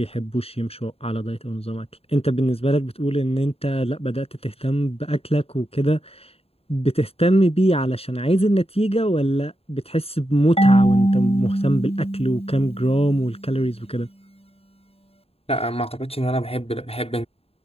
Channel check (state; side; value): late; right; 0.29 ms